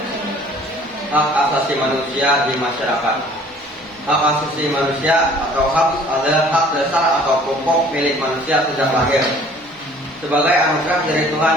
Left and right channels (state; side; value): normal; both; correlation 0.53